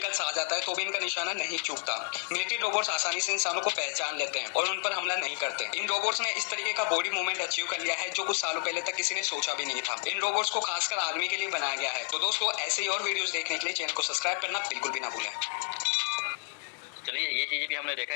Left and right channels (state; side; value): quieter; right; 33.5 dB